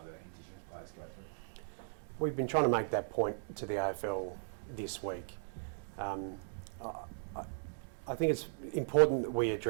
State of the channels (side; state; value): left; silent; digital silence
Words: Indigenous players go through? We've been trying to make that point to the AFL this week. I think it's important that we